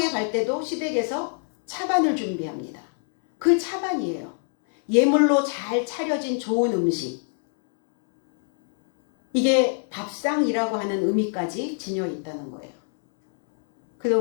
갈 때도 시댁에서 차반을 준비합니다. 그 차반이에요. 예물로 잘 차려진 좋은 음식. 이게 밥상이라고 하는 의미까지 지녀 있다는 거예요. 그래서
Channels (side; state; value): right; silent; 61 dB below the other